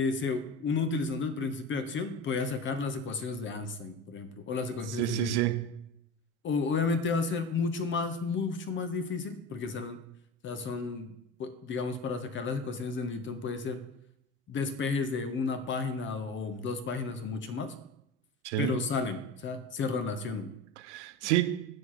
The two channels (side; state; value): both; normal; correlation 0.30